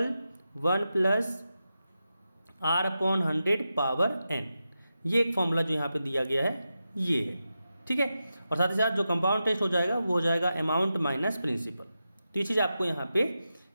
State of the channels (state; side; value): inverted; both; correlation -0.90